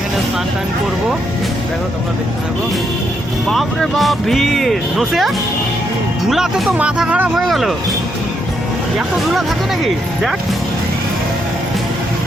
স্নান টান করবো। দেখো তোমরা দেখতে থাকো। বাপরে বাপ ভিড়, নসে ধুলাতে তো মাথা খারাপ হয়ে গেল। এত ধুলা থাকে নাকি? দেখ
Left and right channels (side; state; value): both; normal; correlation 0.78